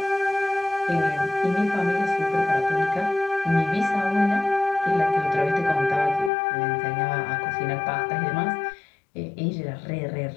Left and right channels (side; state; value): right; drops out; at 6.3 s